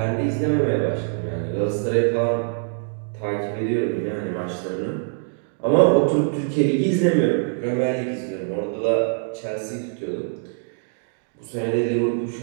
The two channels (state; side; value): silent; left; digital silence